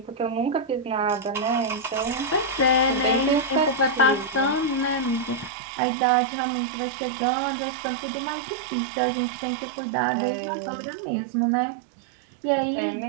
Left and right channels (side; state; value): left; drops out; at 5.5 s